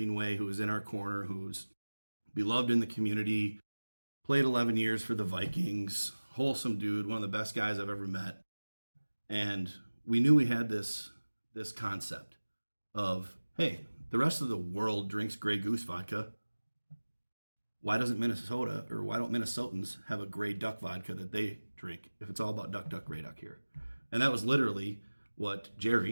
who was in our corner, who's beloved in the community, played 11 years for the Vikings, wholesome dude, one of the best guys I've ever met. And we knew we had this concept of, hey, the rest of the world drinks Grey Goose vodka. Why don't Minnesotans have a Grey Duck vodka that they drink if it's all about duck, duck, Grey Duck here? And that was literally what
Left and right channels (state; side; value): inverted; both; correlation -1.00